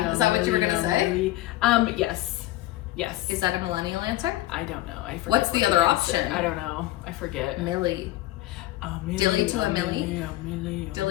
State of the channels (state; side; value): quieter; right; 16.2 dB